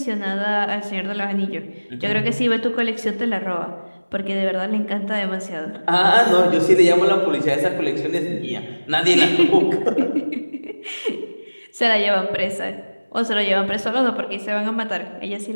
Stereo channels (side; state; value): both; inverted; correlation -1.00